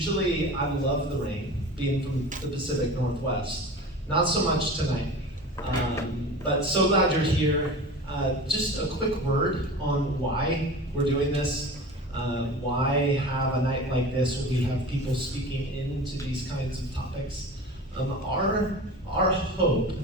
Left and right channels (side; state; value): both; normal; correlation 0.35